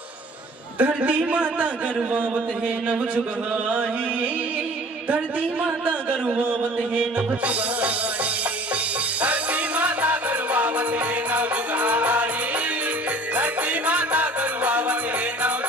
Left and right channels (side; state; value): both; normal; correlation 0.48